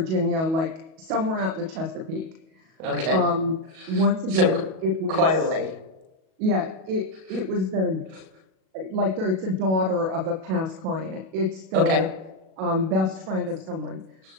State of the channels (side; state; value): left; late; 37 ms